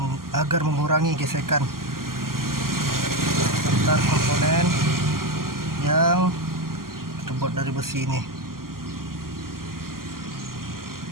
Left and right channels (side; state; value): left; late; 0.92 ms